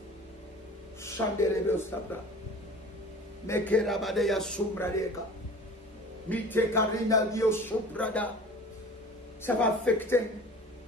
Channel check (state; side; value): normal; both; correlation 0.41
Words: Chandelebe Ostabra. Mekerabadeya Sumbradeka. Mitekarina Dio Subrada. Ça va affecter